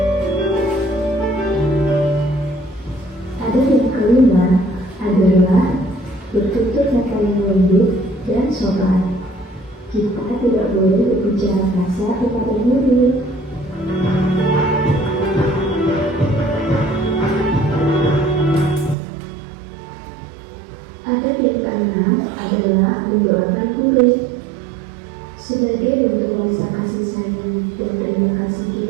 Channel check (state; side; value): drops out; left; at 18.9 s